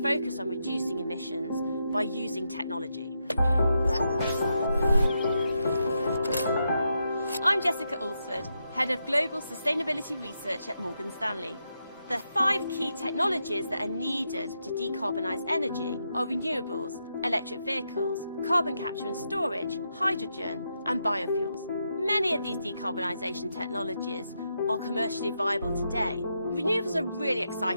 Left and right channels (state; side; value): inverted; both; correlation -0.84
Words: focus on reducing emissions by using technology. I'm Jessica Alsford, Head of Global Sustainability Research at Morgan Stanley. The 5 key technologies that are needed to decarbonise energy are renewables, electric vehicles, carbon capture and storage, hydrogen and biofuels. Many of these decarbonisation technologies are commercially viable today. Renewables are really